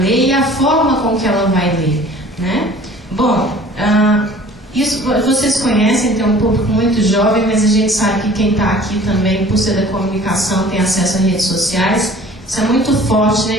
e a forma com que ela vai ler, né? Bom, isso vocês conhecem, tem um público muito jovem, mas a gente sabe que quem está aqui também, por ser da comunicação, tem acesso a redes sociais. Isso é muito forte,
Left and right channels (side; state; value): both; normal; correlation 0.48